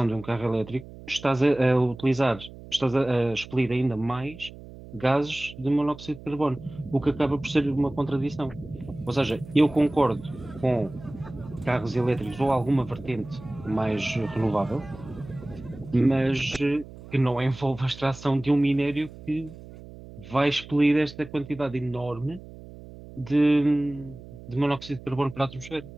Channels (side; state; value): right; noise; hum, 17 dB below the sound